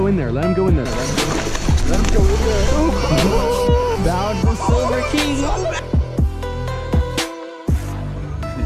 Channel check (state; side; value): identical; both; correlation 1.00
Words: in there. Let him go in there. Let him go in there. Oh. Bound the Silver King.